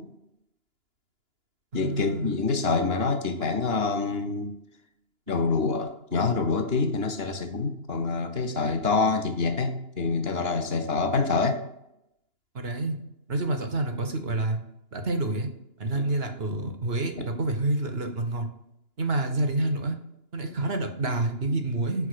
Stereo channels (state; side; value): late; left; 2.9 ms